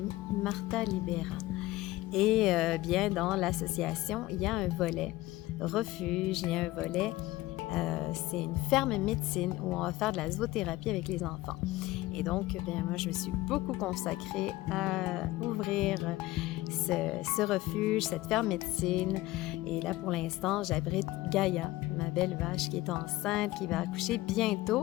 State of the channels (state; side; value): quieter; right; 17.8 dB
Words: Martha Libera. Et bien dans l'association, il y a un volet refuge, il y a un volet, c'est une ferme médecine où on va faire de la zoothérapie avec les enfants. Et donc, bien, moi, je me suis beaucoup consacrée à ouvrir ce refuge, cette ferme médecine. Et là, pour l'instant, j'abrite Gaïa, ma belle vache qui est enceinte, qui va accoucher